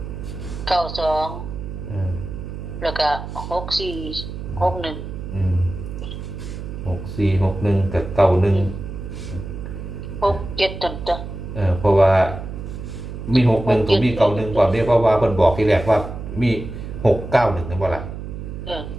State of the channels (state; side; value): noise; right; hum, 8 dB below the sound